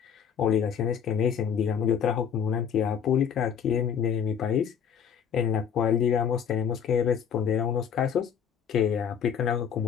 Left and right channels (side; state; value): right; quieter; 7.8 dB